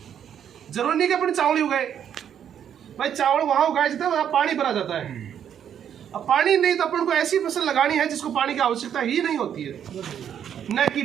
जरूरी नहीं कि अपन चावल ही उगाए। भाई चावल वहां उगाया जाता है, वहां पानी भरा जाता है। अब पानी नहीं तो अपन को ऐसी फसल लगानी है जिसको पानी की आवश्यकता ही नहीं होती है, न कि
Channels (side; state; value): left; quieter; 9.0 dB